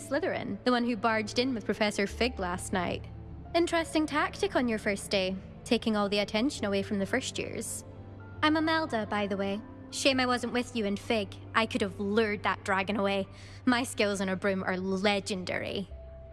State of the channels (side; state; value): both; identical; correlation 1.00